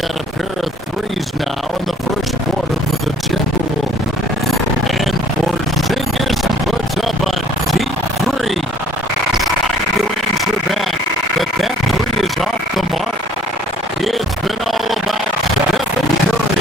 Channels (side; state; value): both; normal; correlation 0.57